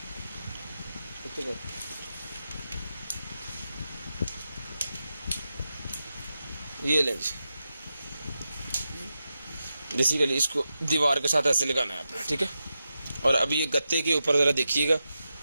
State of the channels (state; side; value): inverted; both; correlation -0.89